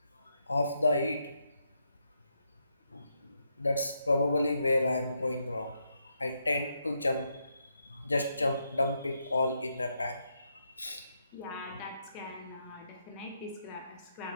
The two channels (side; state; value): both; inverted; correlation -0.80